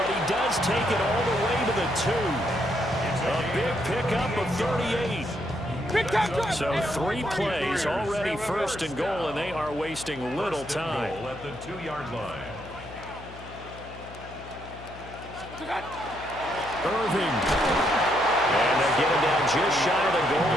he does take it all the way to the 2. A big pickup of 38. So 3 plays already first and goal, and they are wasting little time. At the 2-yard line. Irving. And they're getting down just shy of the goal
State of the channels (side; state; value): left; noise; hum, 15 dB below the sound